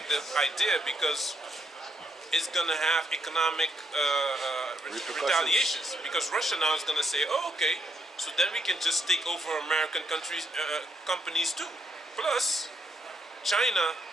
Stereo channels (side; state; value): both; normal; correlation 0.75